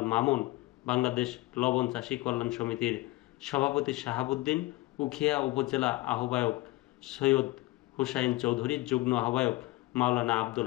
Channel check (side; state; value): right; quieter; 19.7 dB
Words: মামুন, বাংলাদেশ লবণ চাষী কল্যাণ সমিতির সভাপতি শাহাবুদ্দিন, উখিয়া উপজেলা আহ্বায়ক সৈয়দ হুসাইন চৌধুরী, যুগ্ম আহ্বায়ক মাওলানা